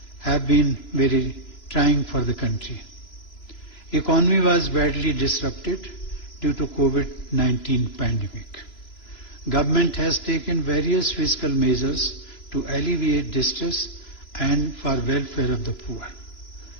have been very trying for the country. Economy was badly disrupted due to COVID-19 pandemic. Government has taken various fiscal measures to alleviate distress and for welfare of the poor.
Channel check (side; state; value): right; late; 3.0 ms